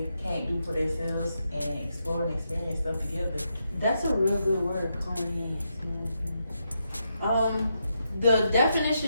can't do for themselves and explore and experience stuff together. That's a real good word, co-enhance. The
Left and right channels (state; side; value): inverted; both; correlation -0.82